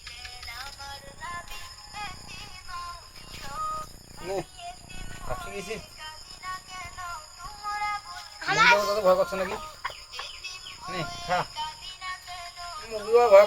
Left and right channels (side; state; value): both; identical; correlation 1.00